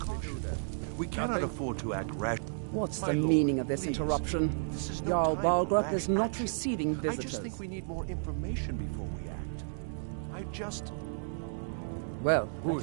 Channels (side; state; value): left; silent; digital silence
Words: We cannot afford to act rash. What's My the lord, meaning of this please. interruption? This is no Jarl time for Balgruuf rash is not action. receiving I visitors. just think we need more information before we act. Well, that Who's